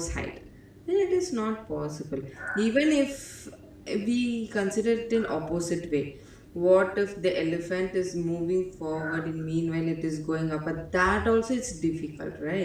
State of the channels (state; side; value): identical; both; correlation 1.00